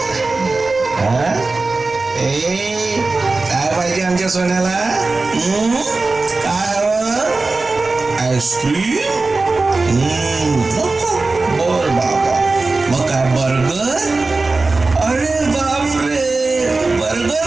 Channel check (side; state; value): left; quieter; 3.6 dB